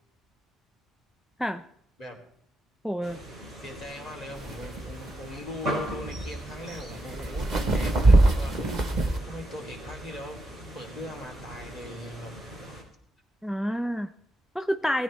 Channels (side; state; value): both; normal; correlation 0.86